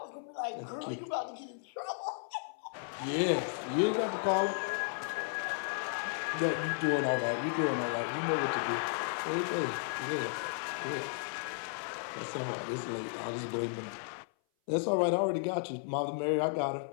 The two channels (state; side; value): silent; right; 55 dB below the other